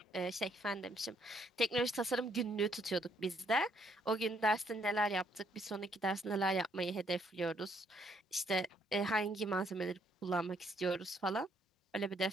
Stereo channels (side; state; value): both; normal; correlation 0.70